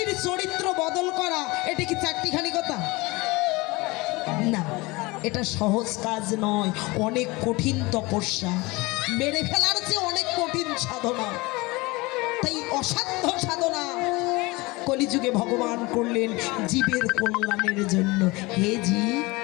চরিত্র বদল করা এটা কি চারটিখানি কথা? না, এটা সহজ কাজ নয়, অনেক কঠিন তপস্যা। মেরে ফেলার চেয়ে অনেক কঠিন সাধনা, তাই অসাধ্য সাধনা কলিযুগে ভগবান করলেন জীবের কল্যাণের জন্য। হে জীব,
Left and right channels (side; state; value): right; quieter; 23.4 dB